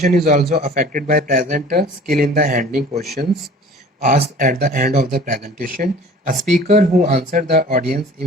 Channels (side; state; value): both; normal; correlation 0.47